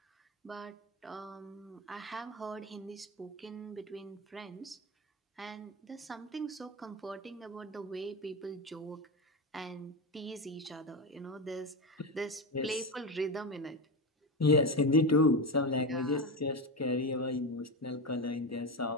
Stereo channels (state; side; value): normal; both; correlation 0.16